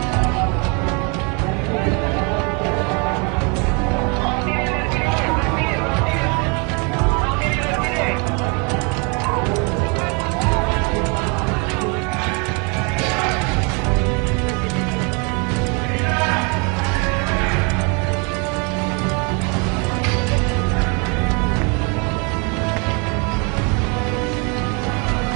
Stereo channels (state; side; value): quieter; left; 33.0 dB